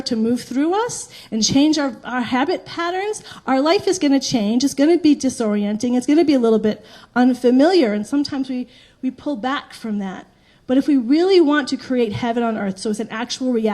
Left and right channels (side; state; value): both; identical; correlation 1.00